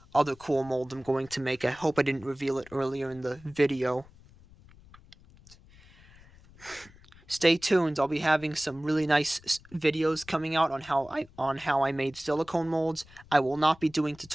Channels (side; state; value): left; noise; rumble, 24 dB below the sound